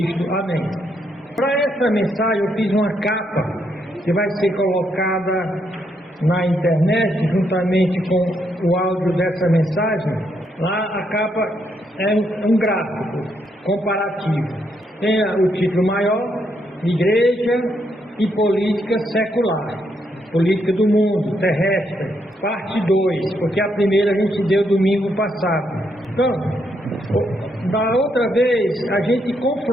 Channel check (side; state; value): both; normal; correlation 0.77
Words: Amém. Para essa mensagem eu fiz uma capa que vai ser colocada na internet juntamente com o áudio dessa mensagem. Lá a capa é um gráfico comparativo. Tem o título maior: Igreja e Política Secular, Política do Mundo Terrestre, parte 2, porque a primeira a gente deu domingo passado. Então, da outra vez a gente